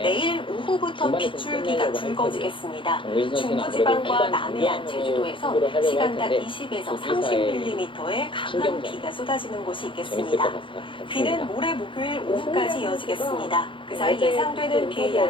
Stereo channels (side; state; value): right; late; 0.25 ms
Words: 오후부터 빗줄기가 굵어지겠습니다. 중부지방과 남해안, 제주도에서 시간당 20에서 30mm의 강한 비가 쏟아지는 곳이 있겠습니다. 비는 모레 목요일 오후까지 이어지겠습니다. 그 사이 예상되는 비의